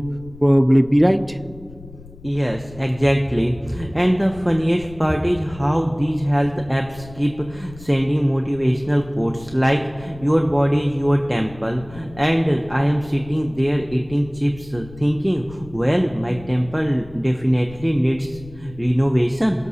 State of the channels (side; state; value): left; noise; rumble, 19 dB below the sound